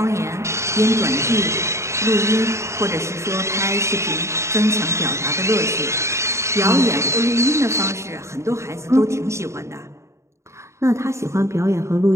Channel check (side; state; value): left; late; 0.14 ms